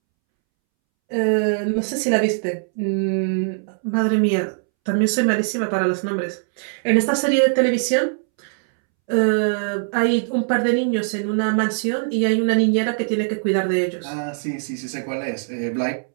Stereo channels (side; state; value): left; silent; 65 dB below the other